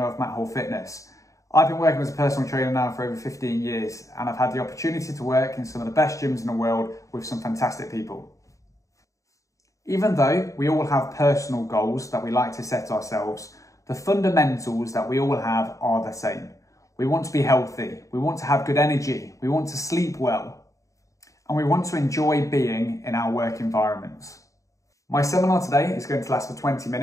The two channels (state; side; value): late; right; 0.16 ms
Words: of Matt Hall Fitness. I've been working as a personal trainer now for over 15 years and I've had the opportunity to work in some of the best gyms in the world with some fantastic people. Even though we all have personal goals that we like to set ourselves, the fundamentals that we all have are the same. We want to be healthy, we want to have good energy, we want to sleep well, and we want to enjoy being in our work environments. My seminar today is going to last for 20